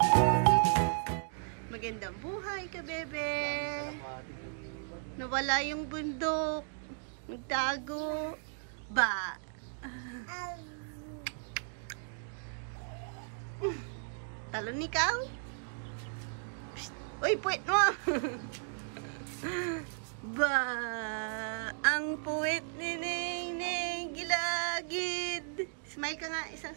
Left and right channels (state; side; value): silent; left; digital silence